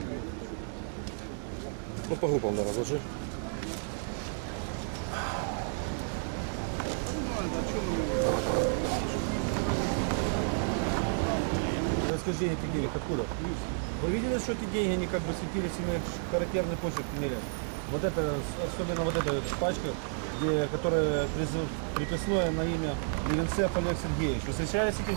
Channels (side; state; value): left; silent; 57 dB below the other